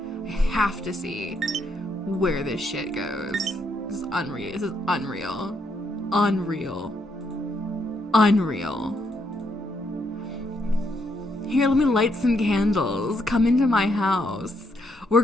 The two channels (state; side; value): normal; both; correlation 0.75